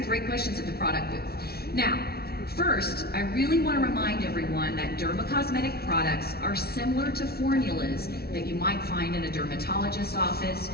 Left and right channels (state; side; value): late; right; 0.45 ms